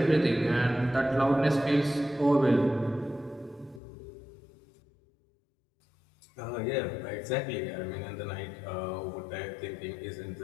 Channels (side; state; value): right; drops out; at 3.8 s